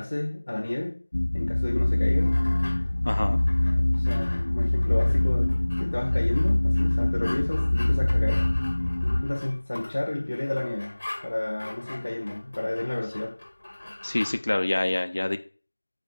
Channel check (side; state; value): both; inverted; correlation -1.00